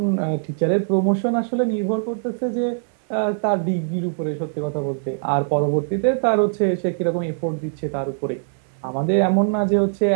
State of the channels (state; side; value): silent; left; digital silence